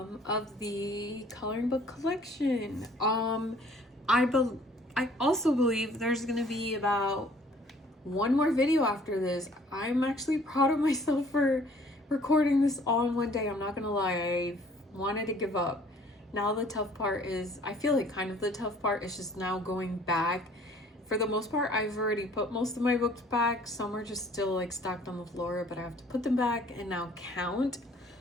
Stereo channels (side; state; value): both; normal; correlation 0.56